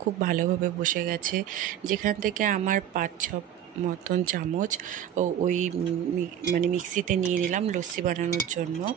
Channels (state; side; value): quieter; left; 10.1 dB